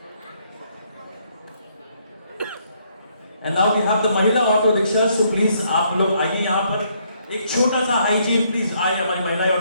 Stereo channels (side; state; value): both; inverted; correlation -0.71